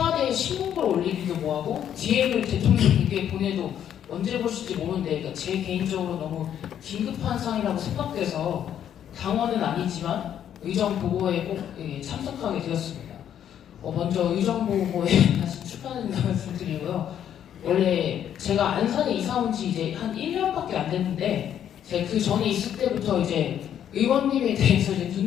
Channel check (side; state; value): right; quieter; 9.8 dB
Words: 신문글 올리기도 뭐하고 DM을 대통령님께 보내도 언제 보실지 모르는데 그러니까 제 개인적으로 너무 긴급한 상황이라고 생각돼서 당원은 아니지만 의정보고에 꼭 참석하게 되었습니다. 먼저 의정보고에 다시 축하드린다는 말씀드리고요. 원래 제가 안산에 이사 온 지 이제 한 1년밖에 안 됐는데 제가 그 전에 있을 때부터 이제 의원님에 대해서 이제